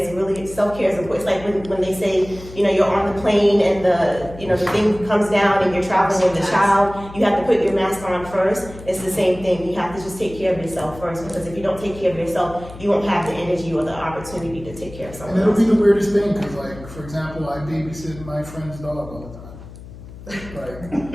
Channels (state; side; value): noise; left; hum, 16 dB below the sound